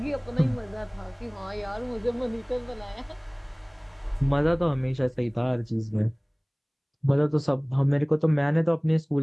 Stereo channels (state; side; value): identical; both; correlation 1.00